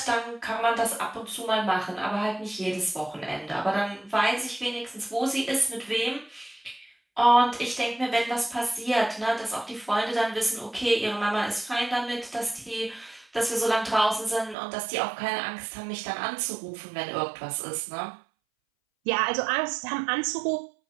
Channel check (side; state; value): left; drops out; at 14.6 s